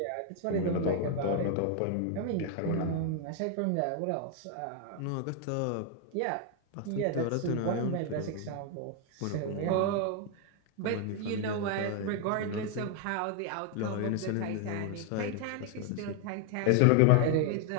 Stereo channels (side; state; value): both; different; correlation 0.00